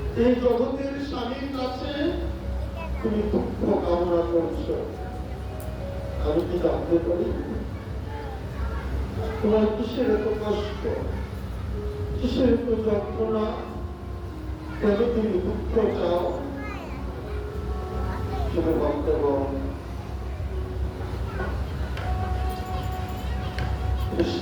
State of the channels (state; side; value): identical; both; correlation 1.00